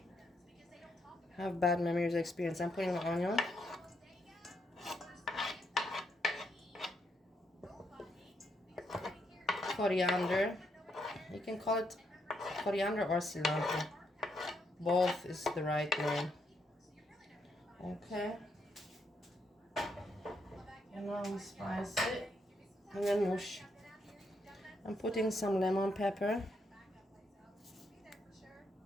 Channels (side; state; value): both; normal; correlation 0.77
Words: have bad memories or experience. I'm putting the onion. Coriander. You can call it coriander or cilantro. Both is the right name. Okay. And now we spice it. And then mush. I'm putting some lemon pepper.